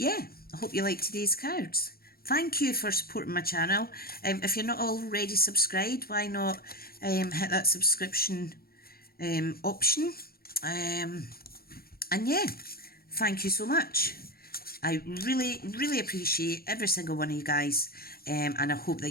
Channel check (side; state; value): right; late; 0.44 ms